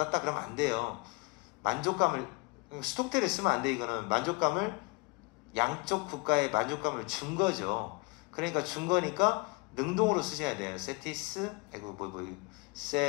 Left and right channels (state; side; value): quieter; right; 27.0 dB